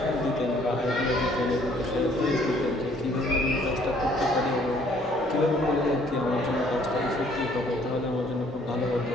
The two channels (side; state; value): both; normal; correlation 0.61